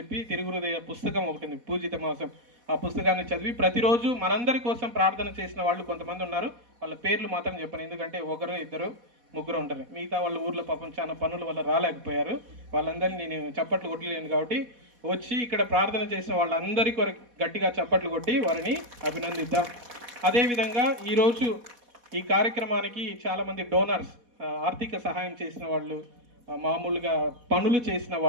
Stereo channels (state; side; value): late; left; 4.1 ms